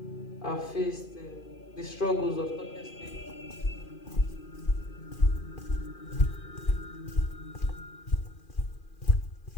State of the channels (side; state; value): right; late; 2.4 ms